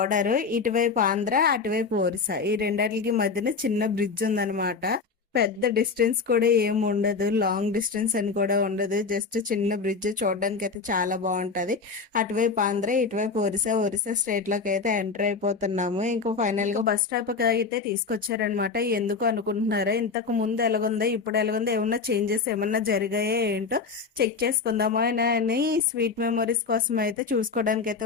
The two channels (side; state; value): right; quieter; 4.8 dB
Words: ఇటువైపు ఆంధ్ర, అటువైపు ఒరిస్సా, ఈ రెండాటికి మధ్యన చిన్న బ్రిడ్జ్ ఉందన్నమాట. పెద్ద డిస్టెన్స్ కూడా ఏం ఉండదు, లాంగ్ డిస్టెన్స్ అని కూడా ఉండదు, జస్ట్ చిన్న బ్రిడ్జ్. చూడడానికి అయితే చాలా బాగుంటది. అటువైపు ఆంధ్ర, ఇటువైపు ఒరిస్సా స్టేట్ లోకి అయితే ఎంటర్ అయిపోతున్నాము. ఇంకా ఫైనల్ గా బస్ స్టాప్ అయితే తీసుకొచ్చారనమాట. ఎందుకు అనుకుంటున్నారా? ఇంతకు ముందు ఎలాగుందో ఇప్పుడు ఎలాగుందో, ఏమన్నా చేంజెస్ ఏమన్నా జరిగాయో ఏంటో చెక్ చేసుకుందామా అని స్వీట్ మెమరీస్ కోసం అయితే చూసుకోవడానికి